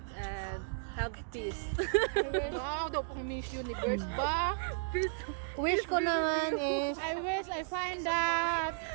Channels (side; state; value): left; silent; digital silence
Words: and have peace. Wow, daw pang Miss Universe ba? Wish ko naman is... I wish I find that